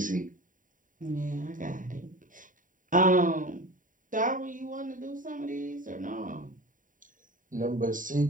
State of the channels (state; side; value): late; left; 0.39 ms